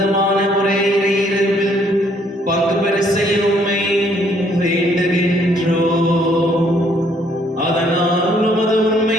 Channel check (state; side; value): normal; both; correlation 0.66